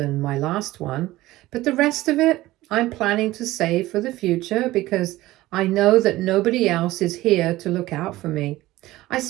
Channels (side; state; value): left; quieter; 17.2 dB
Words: my last one. But the rest of it, I'm planning to save for the future because I know that nobody else is here to look out for me. I